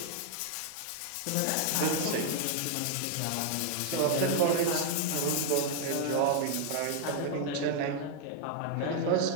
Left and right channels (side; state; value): both; different; correlation 0.00